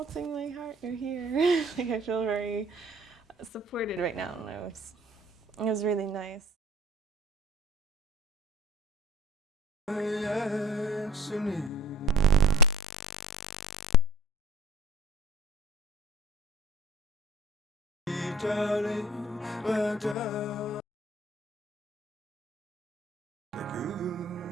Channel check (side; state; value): both; normal; correlation 0.49